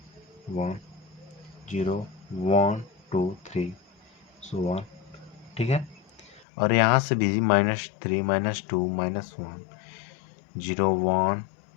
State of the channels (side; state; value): right; drops out; at 6.5 s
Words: 0, 1, 2, 3, सो ऑन, ठीक है। और यहाँ से भी -3, -2, -1, 0, 1,